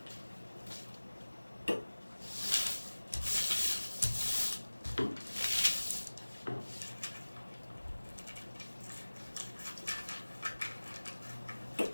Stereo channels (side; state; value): both; inverted; correlation -1.00